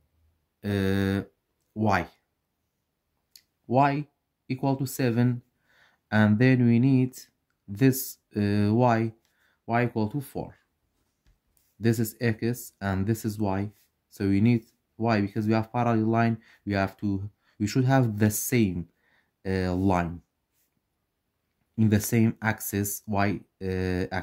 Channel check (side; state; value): both; identical; correlation 1.00